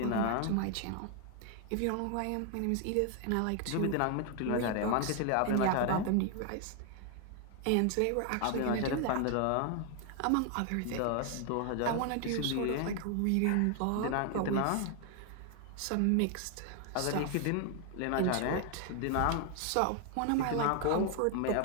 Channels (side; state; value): both; different; correlation 0.00